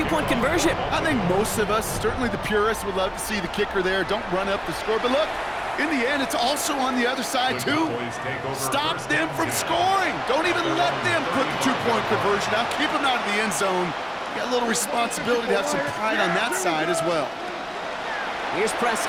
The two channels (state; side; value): identical; both; correlation 1.00